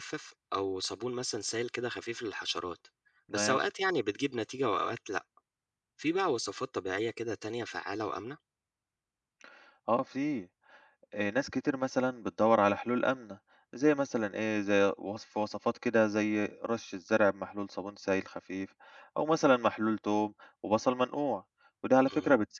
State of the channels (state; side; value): identical; both; correlation 1.00